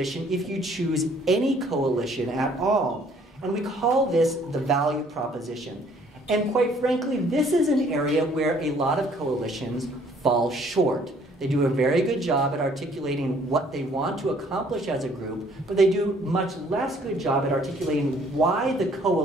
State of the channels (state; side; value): normal; both; correlation 0.60